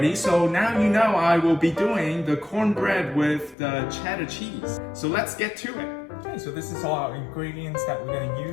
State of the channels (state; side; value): drops out; right; at 3.6 s